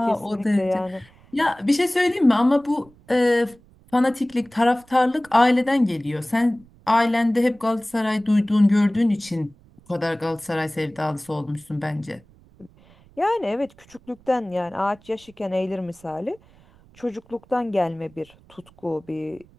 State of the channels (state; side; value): noise; right; rumble, 28 dB below the sound